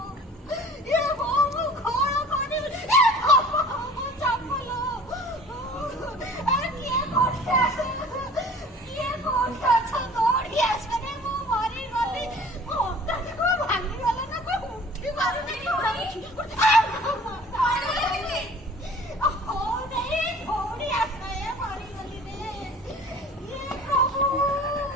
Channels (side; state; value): both; normal; correlation 0.47